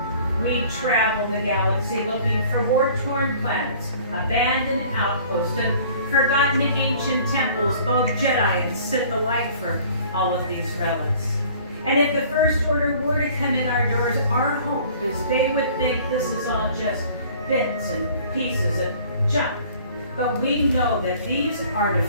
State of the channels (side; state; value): both; inverted; correlation -0.51